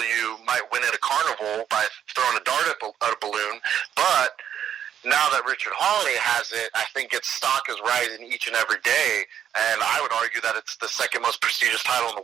you might win at a carnival by throwing a dart at a balloon. But now that Richard Hawley has it, I think its stock is rising each and every day. And I would argue that it's the second most prestigious title in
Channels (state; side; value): quieter; left; 9.5 dB